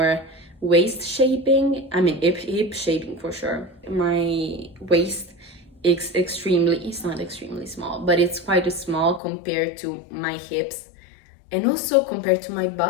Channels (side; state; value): right; drops out; at 9.2 s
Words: waist shaping. I mean, hip shaping for sure. My waist is it's not extremely small, but it's quite small compared to my hips and also compared to my